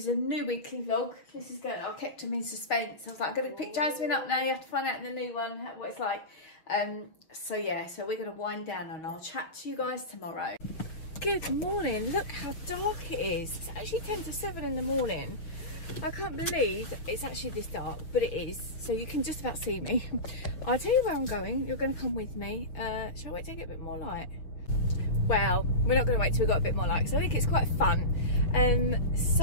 a new weekly vlog. This is good. I kept them in suspense. I was like, I'm going to pick Jasmine up now. You have to find out in the new one what it's like. So yeah, so we're going to wind down and I'll chat to you guys tomorrow. Good morning. Look how dark it is. It's actually 10 to 7 in the morning. I can't believe it's actually this dark, but it is. So you can just about see me. I'll tell you where I'm going. You're going to come with me. Shall I wait till I get a bit more light? Well, we're not going to wait till we've got a bit more light, so I think it's quite fun.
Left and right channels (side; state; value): right; late; 6.1 ms